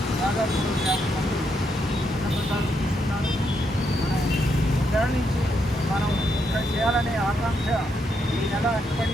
దాదాపు 50 మంది అన్నప్రసాదం తీసుకున్నారు. మనం నెల నుంచి మనం ఇక్కడ చేయాలనే ఆకాంక్ష ఈ నెల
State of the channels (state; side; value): normal; both; correlation 0.79